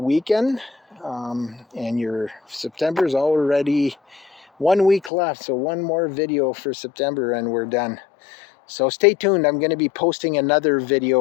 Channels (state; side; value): drops out; right; at 5.1 s